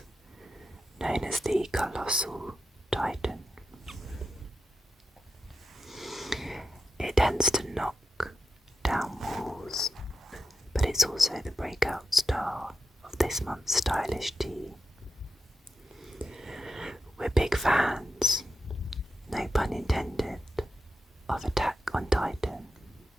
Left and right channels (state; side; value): normal; both; correlation 0.88